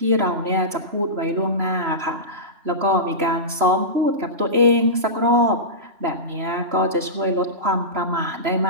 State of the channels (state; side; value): late; left; 3.0 ms